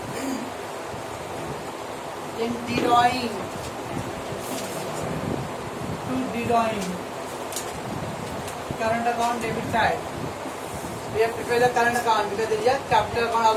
Then drawing current account debit side. We have prepared the current account because there is a capital account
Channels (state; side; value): identical; both; correlation 1.00